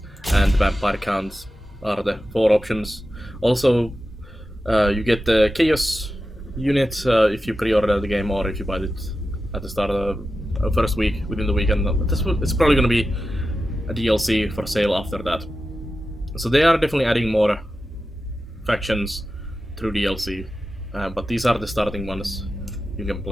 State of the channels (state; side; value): normal; both; correlation 0.92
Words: and the Vampire Counts are the 4 options. Also, you get the Chaos unit if you pre-order the game or if you buy it at the start of the first week, within the weekend. It's probably going to be a DLC for sale after that. So they are definitely adding more factions through DLC, but these are the starting ones you can